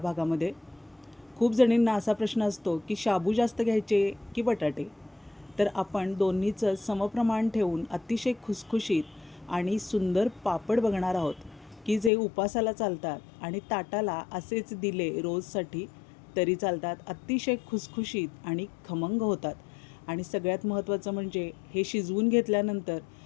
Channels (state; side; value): drops out; right; at 12.1 s